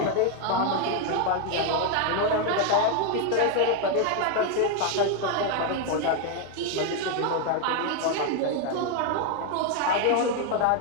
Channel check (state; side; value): different; both; correlation 0.01